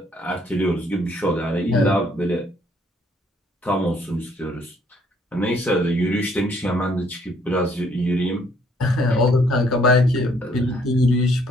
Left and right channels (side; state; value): both; normal; correlation 0.65